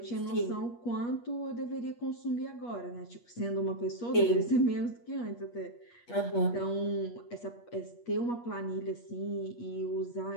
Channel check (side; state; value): right; late; 8.4 ms